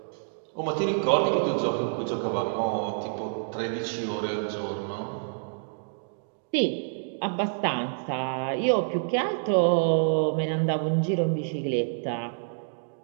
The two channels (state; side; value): silent; left; digital silence